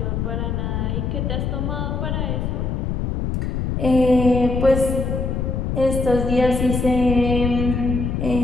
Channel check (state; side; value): noise; left; rumble, 1 dB below the sound